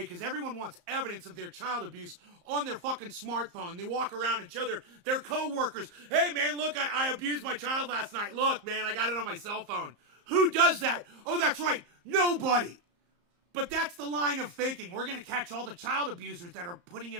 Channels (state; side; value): late; left; 34 ms